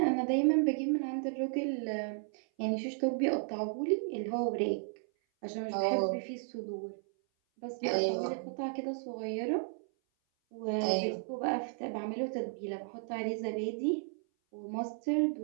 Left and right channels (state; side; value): silent; left; 55 dB below the other